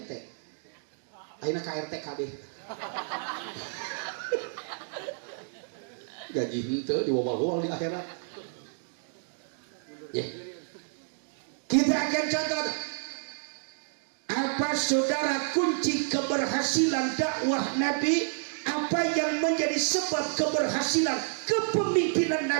Ayeuna ka RT kabeh. Gaji henteu diwawal-wawal di akhirat. Ya. Kita akan contoh apa saudara kunci keberhasilan dakwah Nabi, apa yang menjadi sebab keberhasilan kepemimpinan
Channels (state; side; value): silent; left; digital silence